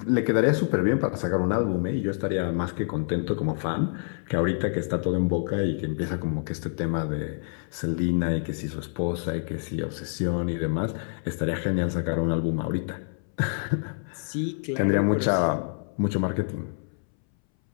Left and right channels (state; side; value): silent; right; 60 dB below the other